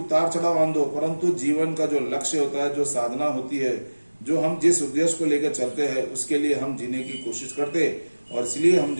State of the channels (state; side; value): inverted; both; correlation -1.00